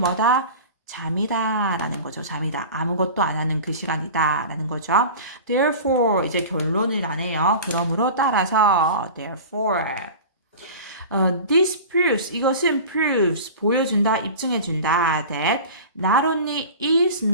잠이다 라는 거죠. 잠이다. 아무것도 안 하는 그 시간이다 라는 거죠. Therefore 이제 결론을 나네요. 그러므로 따라서 therefore this proves 이것은 proves 보여준다 입증해준다 that not only is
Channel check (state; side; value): inverted; both; correlation -0.35